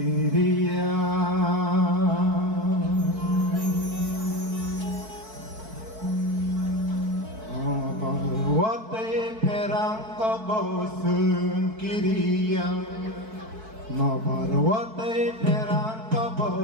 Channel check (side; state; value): left; late; 4.6 ms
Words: Wate perang kabosun Kyria Nobar wate perang